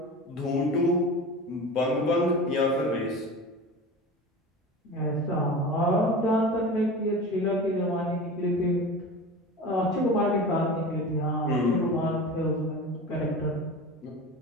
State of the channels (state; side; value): normal; both; correlation 0.32